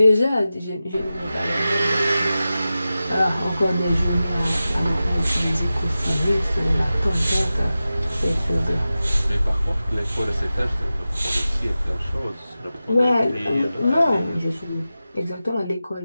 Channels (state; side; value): inverted; both; correlation -0.94